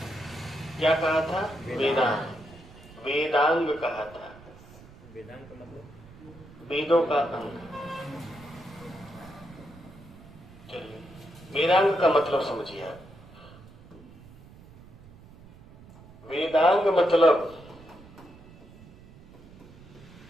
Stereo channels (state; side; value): noise; right; rumble, 21 dB below the sound